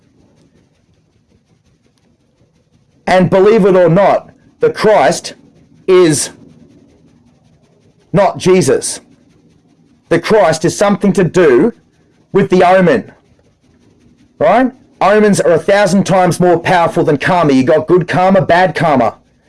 And believe it or not, the Christ is not Jesus. The Christ is something to do with the omen. Right? Omens are 1,000 times more powerful than karma. You got good karma, bad karma.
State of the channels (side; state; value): both; identical; correlation 1.00